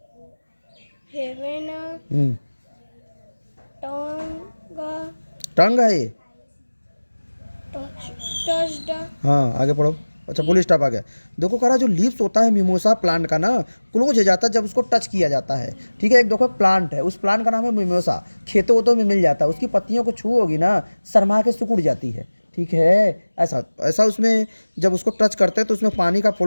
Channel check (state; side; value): inverted; both; correlation -1.00